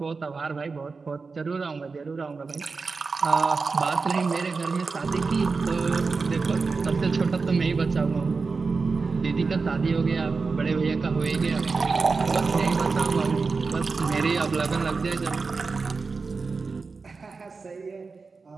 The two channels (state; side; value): quieter; left; 4.5 dB